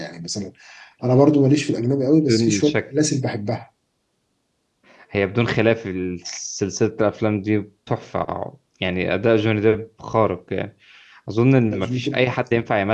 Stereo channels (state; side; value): identical; both; correlation 1.00